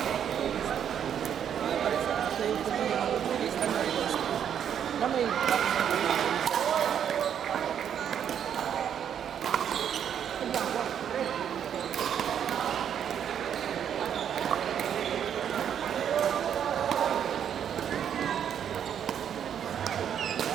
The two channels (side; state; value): left; quieter; 8.8 dB